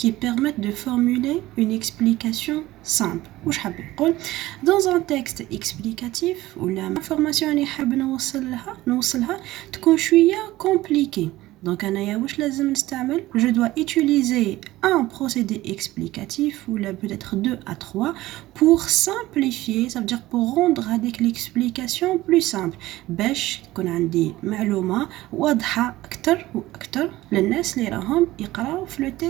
permettent de formuler une explication simple. Dans un texte explicatif où l'information اللي حاب نوصلها تكون شوية compliquée. Donc, je dois utiliser un procédé explicatif ou là peut-être 2 à 3 pour simplifier, ça veut dire pour rendre avec l'explication plus simple. باش تكون عندي معلومة واضحة أكتر وأكتر للناس اللي راهم يقراو في le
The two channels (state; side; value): quieter; left; 17.1 dB